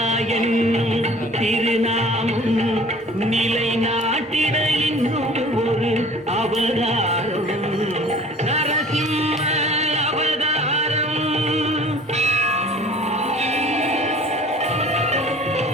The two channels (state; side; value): normal; both; correlation 0.47